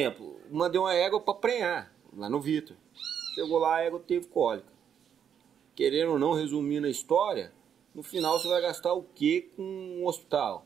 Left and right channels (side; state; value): left; quieter; 8.4 dB